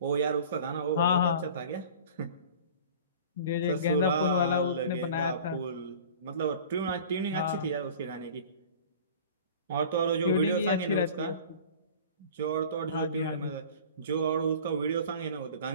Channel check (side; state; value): both; inverted; correlation -0.42